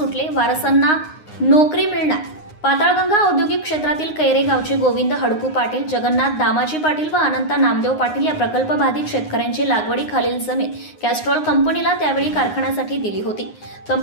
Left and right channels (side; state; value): right; late; 9.6 ms